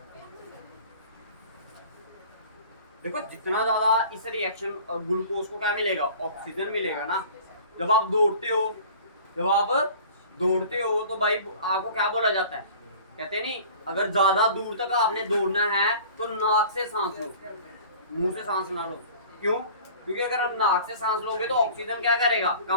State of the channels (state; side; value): inverted; both; correlation -0.44